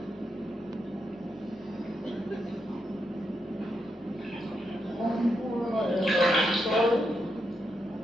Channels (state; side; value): normal; both; correlation 0.82